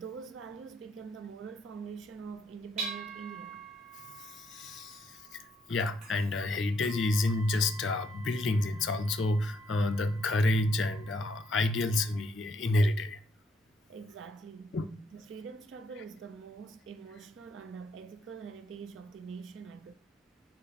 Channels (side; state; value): both; normal; correlation 0.73